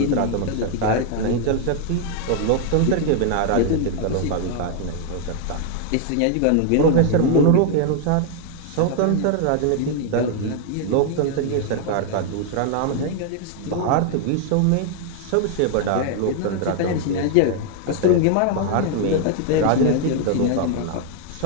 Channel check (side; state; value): both; different; correlation 0.00